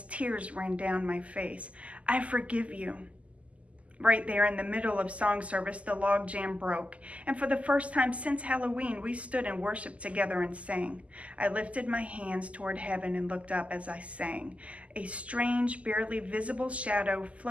tears ran down my face. "I forgive you." Right there in the middle of song service, the log jam broke, and for the first time since Halloween, we stood and worshiped together and sang. I lifted my hands toward heaven and looked up as I sang. A strange, barely visible shadow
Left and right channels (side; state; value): left; late; 0.066 ms